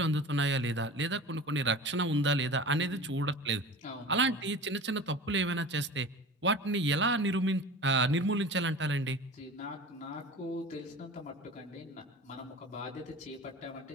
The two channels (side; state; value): both; normal; correlation 0.35